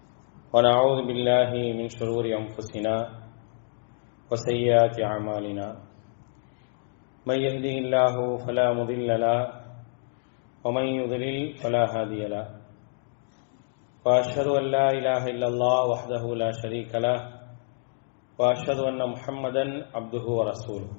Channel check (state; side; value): silent; right; digital silence